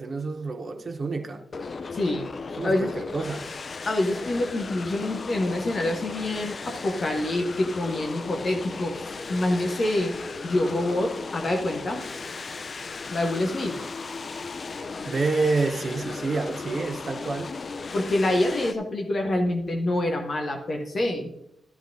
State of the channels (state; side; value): normal; both; correlation 0.90